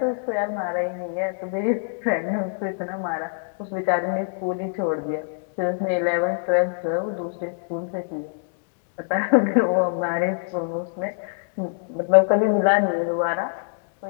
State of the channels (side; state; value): right; silent; digital silence